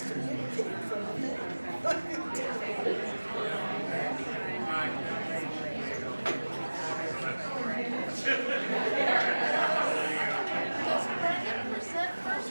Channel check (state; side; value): inverted; both; correlation -1.00